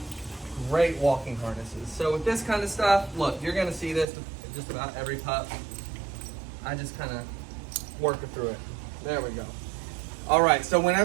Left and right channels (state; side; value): drops out; left; at 4.0 s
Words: walking harnesses. So with this kind of stuff, look, you're gonna see this with just about every pup. I just kind of work her through it. There we go. All right, so